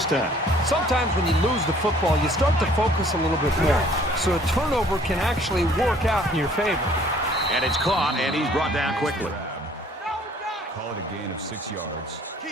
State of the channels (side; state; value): both; normal; correlation 0.57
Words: time. Sometimes when you lose the football, you start to focus a little bit more. So a turnover can actually work out in your favor. And it's caught, and he's brought down quickly. Call it a gain of 6 yards.